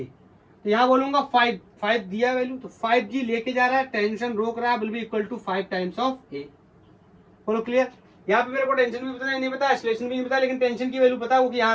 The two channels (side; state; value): both; identical; correlation 1.00